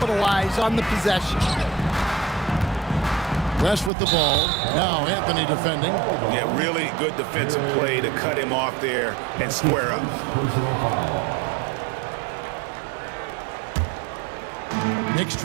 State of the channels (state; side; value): drops out; left; at 3.9 s